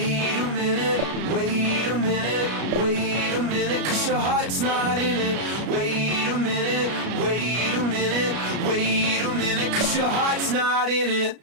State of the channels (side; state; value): left; late; 33 ms